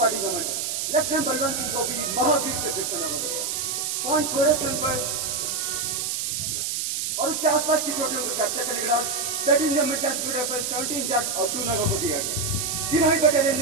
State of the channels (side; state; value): right; noise; hiss, 1 dB below the sound